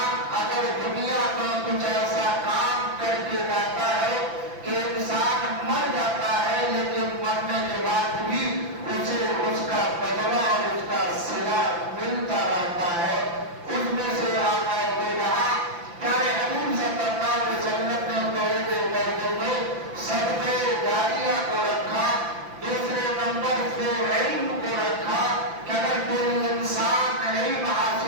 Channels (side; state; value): left; late; 5.9 ms